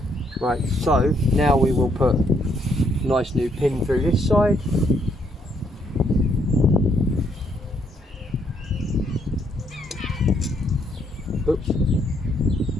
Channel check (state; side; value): normal; both; correlation 0.71